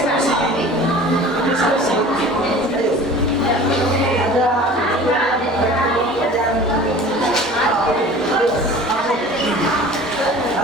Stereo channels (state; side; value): normal; both; correlation 0.42